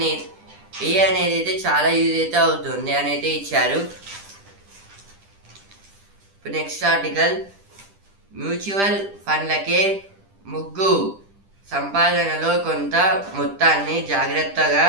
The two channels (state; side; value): late; left; 10 ms